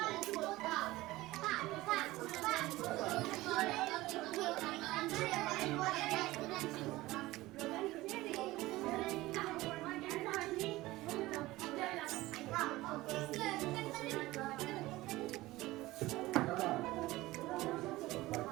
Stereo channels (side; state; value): left; quieter; 18.4 dB